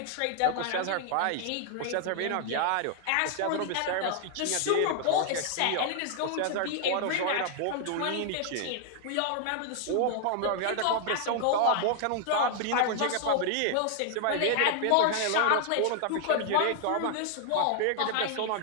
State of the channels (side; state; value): both; different; correlation 0.00